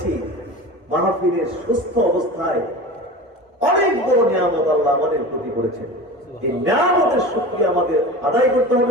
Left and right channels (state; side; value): normal; both; correlation 0.32